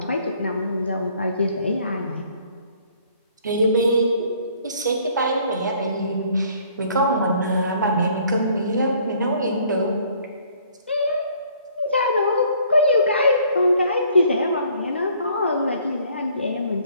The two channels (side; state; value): both; inverted; correlation -0.60